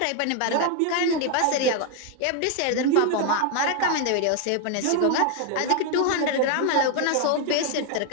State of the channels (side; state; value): both; different; correlation 0.00